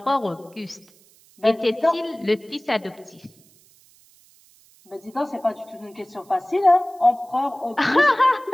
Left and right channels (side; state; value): right; noise; hiss, 29 dB below the sound